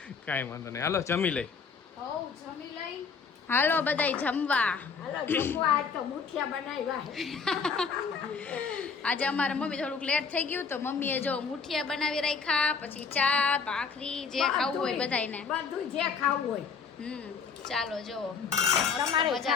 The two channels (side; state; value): right; quieter; 5.5 dB